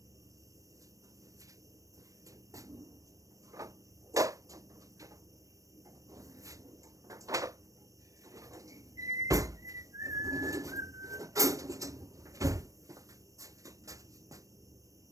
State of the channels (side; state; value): left; late; 0.16 ms